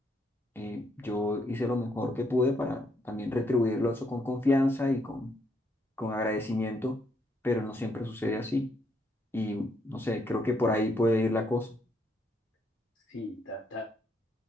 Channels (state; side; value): normal; both; correlation 0.74